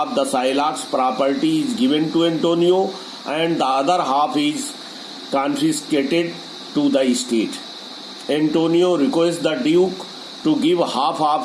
the Shylock's property is given to Antonio and the other half is confiscated to the state. Antonio requests the Duke to give half of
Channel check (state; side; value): identical; both; correlation 1.00